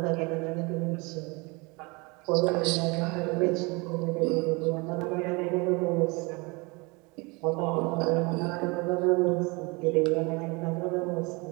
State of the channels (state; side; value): quieter; left; 27.6 dB